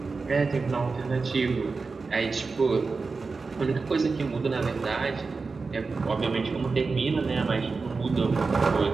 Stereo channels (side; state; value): left; quieter; 4.3 dB